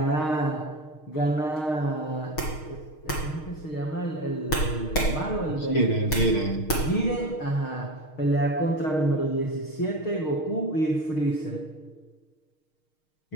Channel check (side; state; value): right; late; 6.5 ms